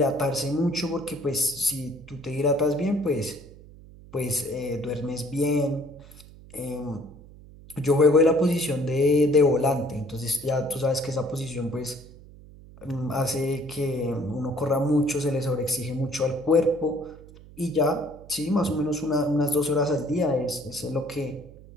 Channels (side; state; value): right; noise; hum, 20 dB below the sound